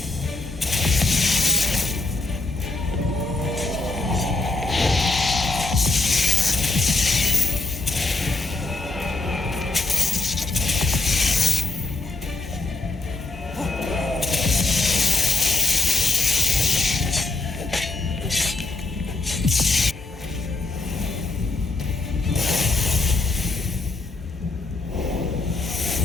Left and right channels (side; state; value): right; quieter; 3.3 dB